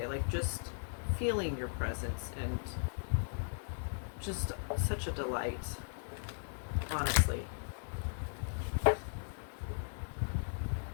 Like, just feeling your presence, and just such a delight, honestly.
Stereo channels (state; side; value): silent; right; 53 dB below the other